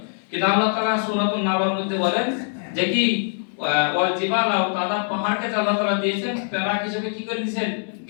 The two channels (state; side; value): silent; right; 62 dB below the other